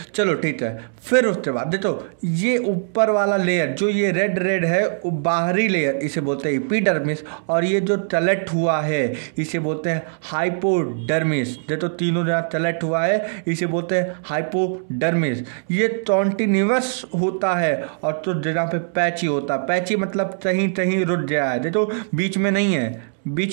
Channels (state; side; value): silent; left; 65 dB below the other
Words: चलो ठीक है। फिर उसके बाद देखो ये ऊपर वाला लेयर जो ये रेड है वो बाहरी लेयर, इसे बोलते हैं एपिडर्मिस, और ये जो तलट हुआ है इसे बोलते हैं हाइपोडर्मिस। देखो तीनों जगह तलट हुआ है इसे बोलते हैं हाइपोडर्मिस। ये कॉन्टिन्यूअस होता है, और तो जगह पे पैची होता है। पैची मतलब कहीं रुक गया है, देखो बीच